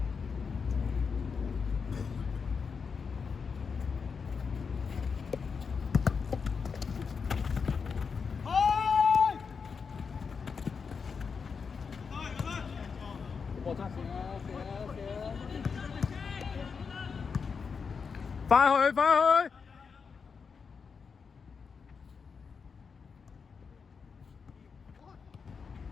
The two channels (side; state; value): right; quieter; 5.6 dB